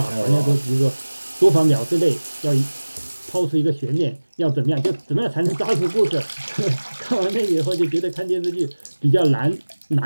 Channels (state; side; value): inverted; both; correlation -1.00